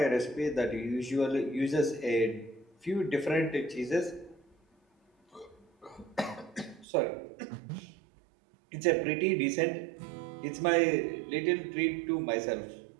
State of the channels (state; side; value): drops out; left; at 6.9 s